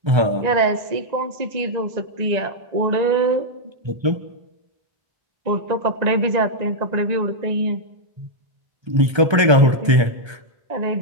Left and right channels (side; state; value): left; late; 1.3 ms